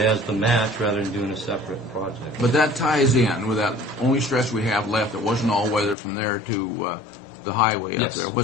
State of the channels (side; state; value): right; drops out; at 6.0 s